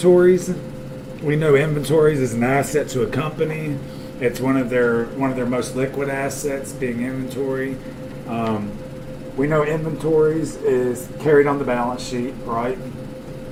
We know inventories is an asset to a company. It's one of their most liquid assets, being inventory. We know inventories is carried on the balance sheet, right?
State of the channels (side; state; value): both; identical; correlation 1.00